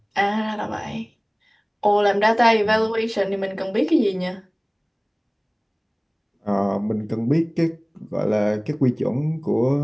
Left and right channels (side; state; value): both; identical; correlation 1.00